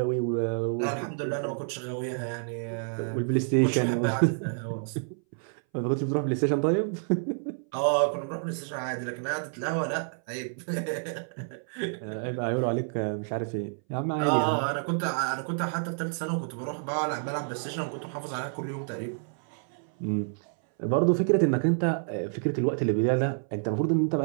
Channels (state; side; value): silent; left; 59 dB below the other